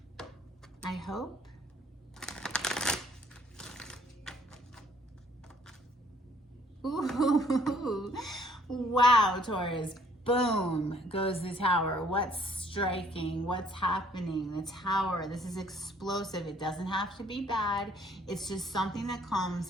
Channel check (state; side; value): normal; both; correlation 0.61